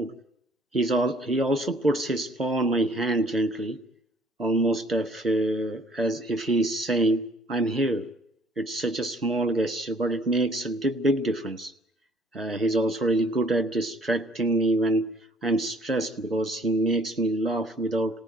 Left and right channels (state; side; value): normal; both; correlation 0.59